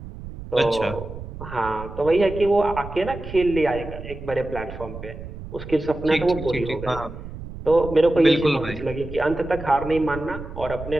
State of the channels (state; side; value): noise; right; rumble, 12 dB below the sound